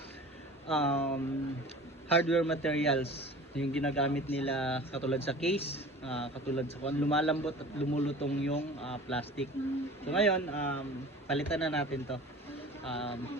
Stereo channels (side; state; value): both; normal; correlation 0.41